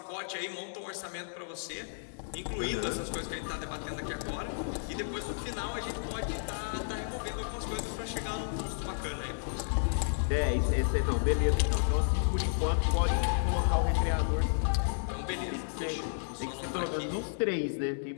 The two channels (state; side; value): silent; right; digital silence